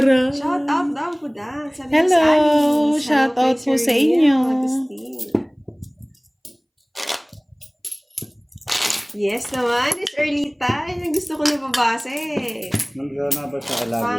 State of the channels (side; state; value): both; identical; correlation 1.00